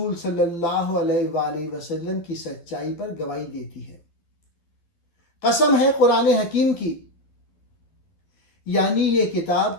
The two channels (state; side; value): late; right; 11 ms